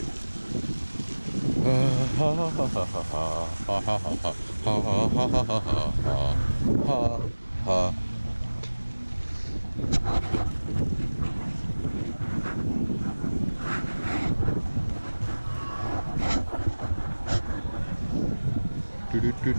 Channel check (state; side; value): inverted; both; correlation -1.00